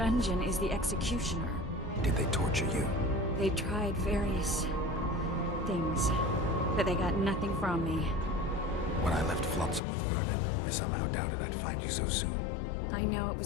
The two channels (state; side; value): drops out; right; at 9.8 s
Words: is the executioner. did they torture you? They tried various things, but they got nothing from me. When I left Flotsam with Vernon, I somehow doubted I'd find you so soon. I know it